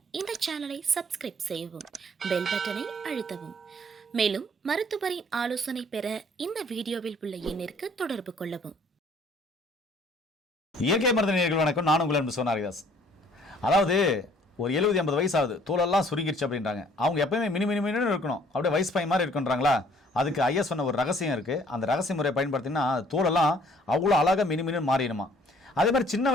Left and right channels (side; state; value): both; normal; correlation 0.59